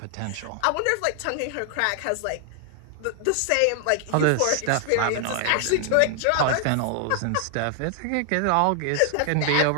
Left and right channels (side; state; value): both; different; correlation 0.00